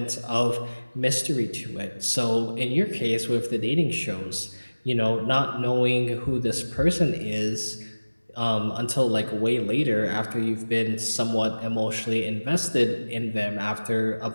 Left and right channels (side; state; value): both; inverted; correlation -1.00